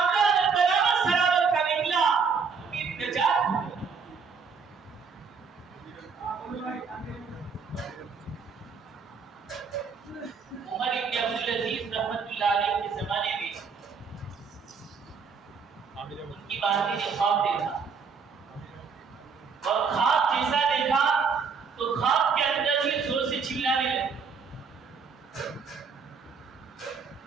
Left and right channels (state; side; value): quieter; left; 5.5 dB